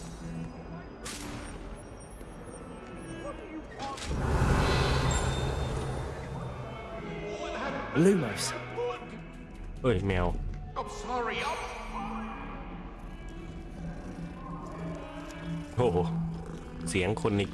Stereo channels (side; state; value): both; identical; correlation 1.00